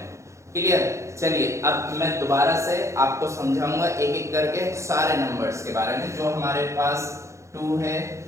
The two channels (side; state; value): left; late; 0.14 ms